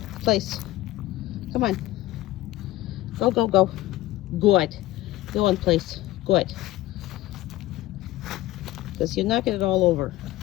Place. Come on. Go, go, go. Good. Go on, place. Good. Because you're knocking it all over.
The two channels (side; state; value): right; quieter; 16.5 dB